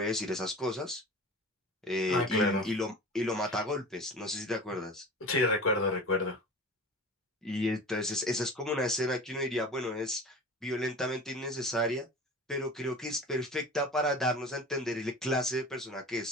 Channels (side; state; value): both; normal; correlation 0.36